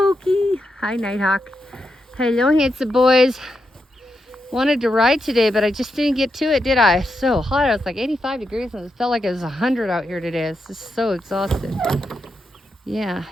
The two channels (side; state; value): both; normal; correlation 0.85